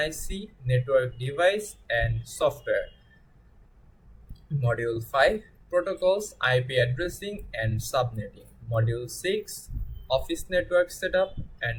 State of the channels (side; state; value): both; identical; correlation 1.00